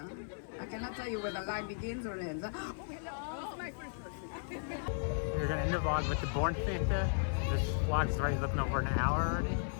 I cannot tell you where the line begins or ends. Huh? Oh, hello. This is my first person. We're gonna end the vlog with the Born Santa. This vlog's already looking over an hour already.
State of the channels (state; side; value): silent; right; 54 dB below the other